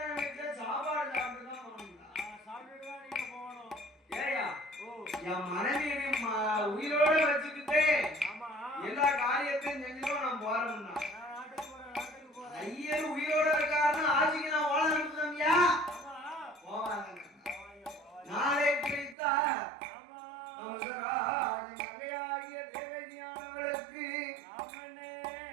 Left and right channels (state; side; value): drops out; left; at 19.2 s